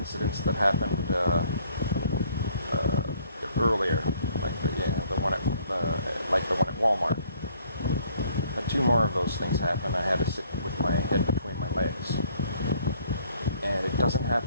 that happened earlier, like the one at Walmart. But two more of those things happened. I had to sit with my head between my legs, and it doesn't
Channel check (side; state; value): both; inverted; correlation -0.61